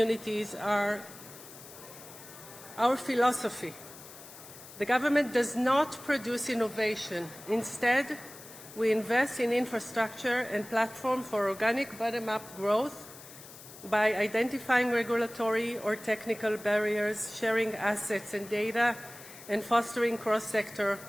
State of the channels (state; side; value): noise; left; hiss, 17 dB below the sound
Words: are our philosophy. The government does not produce innovation. Instead, we invest in infrastructure and platform for organic bottom-up growth by identifying regulatory or technical barriers, sharing assets and data, and fostering cross-sector